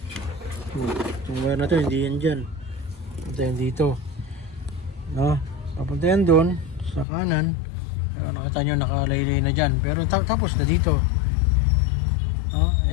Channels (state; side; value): drops out; right; at 7.1 s